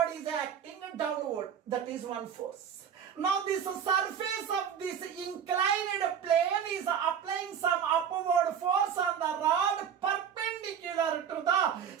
is acting downward. That is one force. Now this surface of this inclined plane is applying some upward force on the rod perpendicular to the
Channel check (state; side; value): quieter; left; 8.1 dB